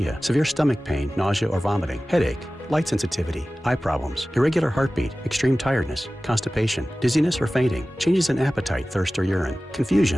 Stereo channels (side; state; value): both; normal; correlation 0.97